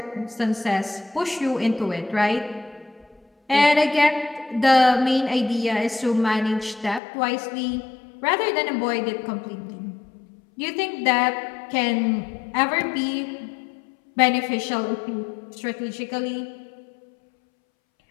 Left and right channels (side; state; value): right; drops out; at 7.0 s